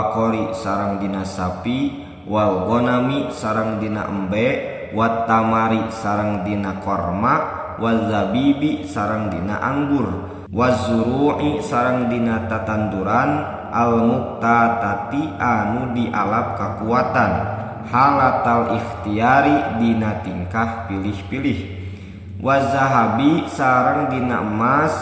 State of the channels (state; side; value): identical; both; correlation 1.00